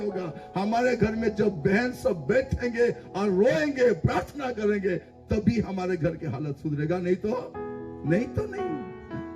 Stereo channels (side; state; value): both; identical; correlation 1.00